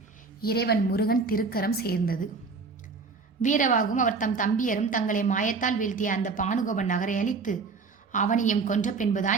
இறைவன் முருகன் திருக்கரம் சேர்ந்தது. வீரவாகும் அவர் தம் தம்பியரும் தங்களை மாயத்தால் வீழ்த்திய அந்த பானுகோபன் நகரை அழித்து அவனையும் கொன்ற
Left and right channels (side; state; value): left; quieter; 4.5 dB